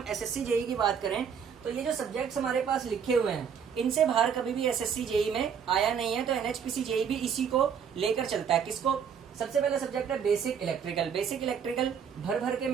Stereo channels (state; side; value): quieter; left; 7.3 dB